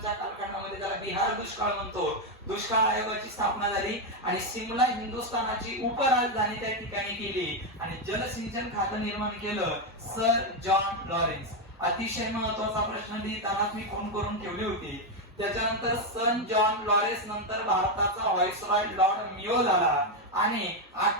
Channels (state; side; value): normal; both; correlation 0.05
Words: कालखंडामध्ये, त्याला बिहार दुष्काळ म्हणतो. दुष्काळ आयोगाची स्थापना झाली आणि शिमला हिंदुस्थानाची उपराजधानी त्या ठिकाणी केली आणि जलसिंचन खातं निर्माण केलं सर जॉन लॉरेन्स. अतिशय महत्वाचा प्रश्न लिहिताना मी फोन करून ठेवली होती. त्याच्यानंतर सन जॉन लॉरेन्स नंतर भारताचा व्हाईसरॉय लॉर्ड मियो झाला आणि